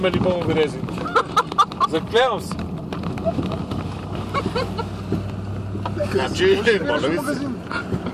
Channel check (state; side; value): identical; both; correlation 1.00